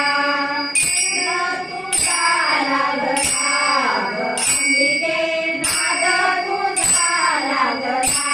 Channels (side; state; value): both; identical; correlation 1.00